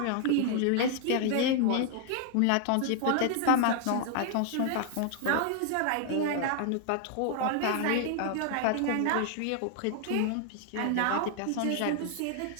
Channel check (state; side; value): different; both; correlation 0.00